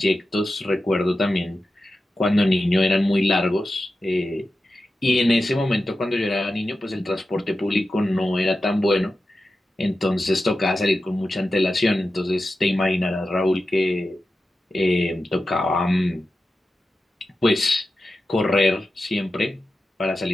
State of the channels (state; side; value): normal; both; correlation 0.92